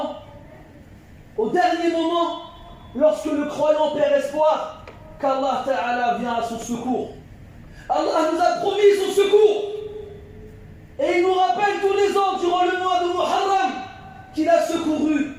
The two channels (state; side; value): identical; both; correlation 1.00